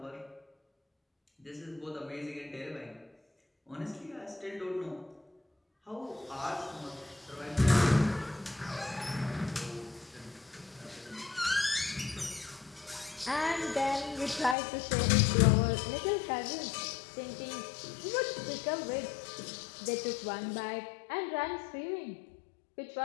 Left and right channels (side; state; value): right; drops out; at 14.6 s